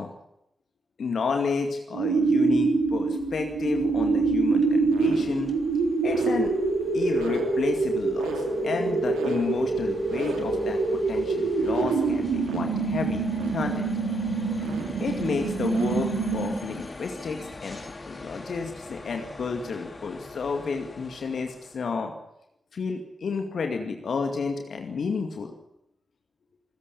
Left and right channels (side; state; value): both; normal; correlation 0.75